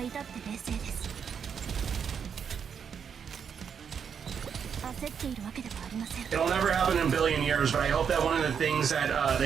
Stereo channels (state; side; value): quieter; left; 7.2 dB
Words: It'll never happen in a billion years, but I hope that one of the things that